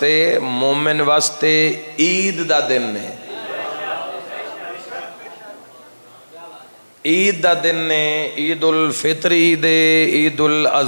مومن واسطے عید دا دن نے عید دا دن نے عید الفطر عید عید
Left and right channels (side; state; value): both; inverted; correlation -1.00